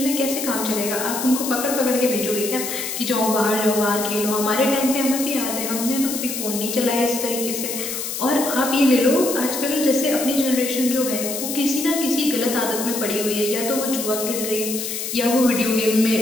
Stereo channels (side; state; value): left; noise; hiss, 5 dB below the sound